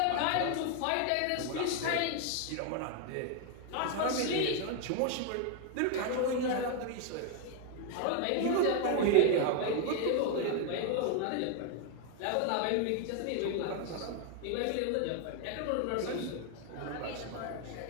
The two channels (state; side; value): different; both; correlation 0.00